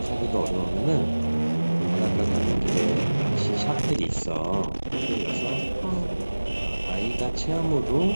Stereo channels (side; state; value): both; inverted; correlation -1.00